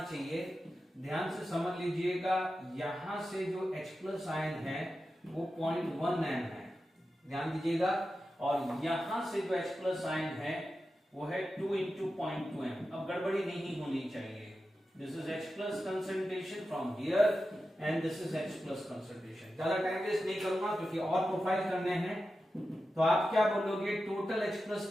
चाहिए। ध्यान से समझ लीजिएगा, यहां से जो H प्लस आयन है वो 0.1 m है, ध्यान दीजिएगा, और यहां से जो H प्लस आयन है वो है 2 into 0.2 m। अब गड़बड़ी नहीं होनी चाहिए। This is H plus concentration from here and this is H plus concentration. ज्यादा टाइम वेस्ट नहीं करूंगा क्योंकि और प्रोफाइल करने हैं। तो आप क्या बोलोगे, टोटल H प्लस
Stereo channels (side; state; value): both; normal; correlation 0.92